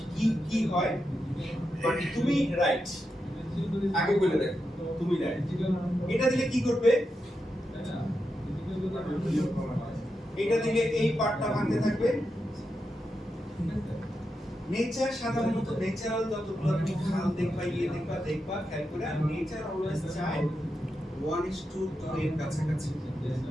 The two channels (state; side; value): normal; both; correlation 0.87